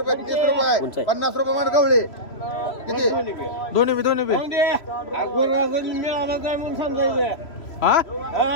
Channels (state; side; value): late; right; 3.0 ms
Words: 30 रुपये 50 रुपये मान गवळे किती दोन्ही बी मिळाला जाय म्हणून समजायचं हा